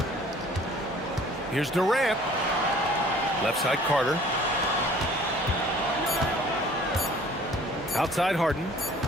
Here's Durant. Left side Carter. Outside Harden.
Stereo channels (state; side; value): normal; both; correlation 0.52